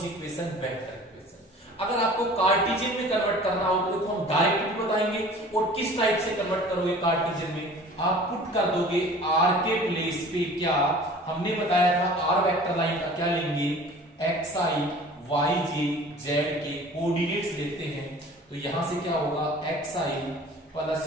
इक्वेशन, वेक्टर इक्वेशन। अगर आपको कार्टेशियन में कन्वर्ट करना हो तो देखो हम डायरेक्ट बताएंगे, और किस टाइप से कन्वर्ट करोगे कार्टेशियन में, आप पुट कर दोगे r के प्लेस पे, क्या हमने बताया था r वेक्टर लाइन का क्या लेंगे, xi yj z के कोऑर्डिनेट्स लेते हैं। तो यहां से क्या होगा, xi plus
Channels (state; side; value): normal; both; correlation 0.45